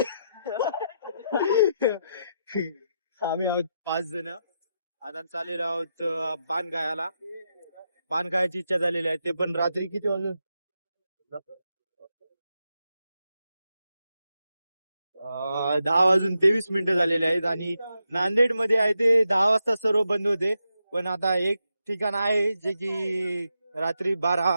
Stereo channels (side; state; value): both; inverted; correlation -0.85